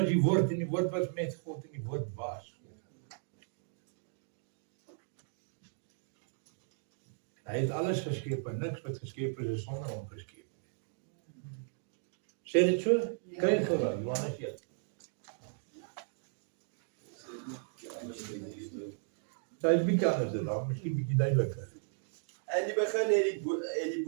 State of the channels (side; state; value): left; silent; digital silence